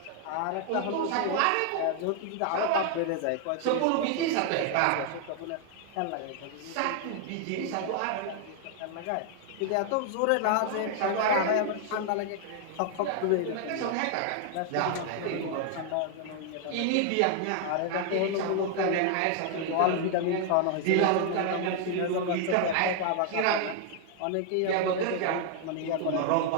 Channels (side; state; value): both; different; correlation 0.00